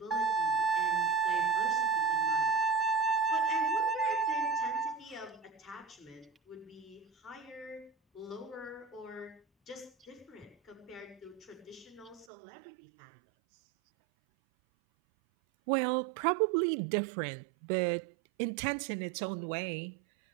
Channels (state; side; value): drops out; left; at 12.2 s